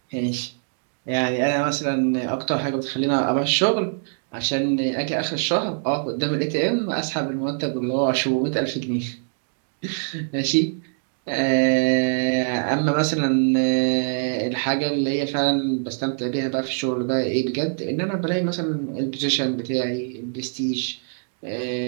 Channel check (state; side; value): silent; left; digital silence